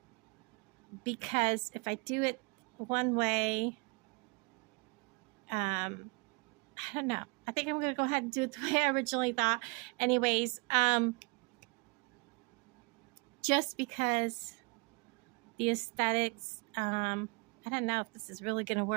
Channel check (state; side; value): quieter; left; 30.3 dB